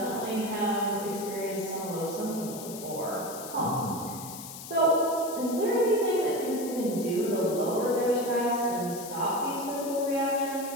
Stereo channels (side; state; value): left; noise; hiss, 12 dB below the sound